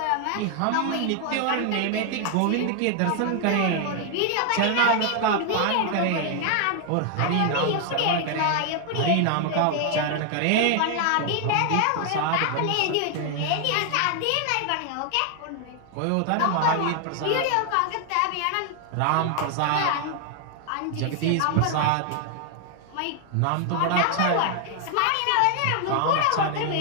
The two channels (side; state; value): both; different; correlation 0.00